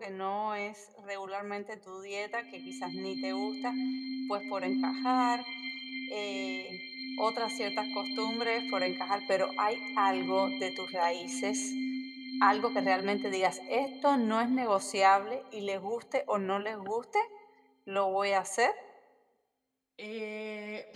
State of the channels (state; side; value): identical; both; correlation 1.00